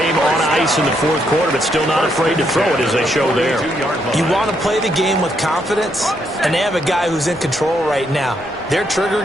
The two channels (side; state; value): left; noise; rumble, 26 dB below the sound